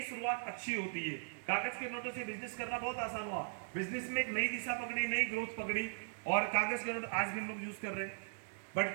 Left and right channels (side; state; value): left; silent; digital silence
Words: शुरुआत अच्छी होती है। कागज के नोटों से बिजनेस करना बहुत आसान हुआ, बिजनेस में एक नई दिशा पकड़ी, नई ग्रोथ पकड़ी और कागज के नोट आज भी हम लोग यूज कर रहे हैं। बट